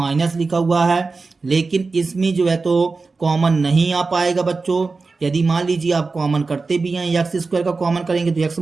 लिखा हुआ है, लेकिन इसमें जो है तो कॉमन नहीं आ पाएगा बच्चों। यदि मान लीजिए आप कॉमन करते भी हैं, x² का कॉमन करेंगे तो x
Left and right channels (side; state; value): left; quieter; 4.1 dB